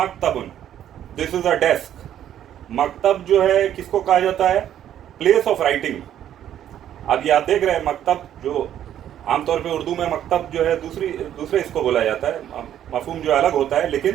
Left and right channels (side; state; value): left; quieter; 10.8 dB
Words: دس از اے ڈیسک. مکتب جو ہے کس کو کہا جاتا ہے؟ Place of writing. اب یہ آپ دیکھ رہے ہیں مکتب جو عام طور پہ اردو میں مکتب جو ہے دوسرے اس کو بولا جاتا ہے، مفہوم جو الگ ہوتا ہے. لیکن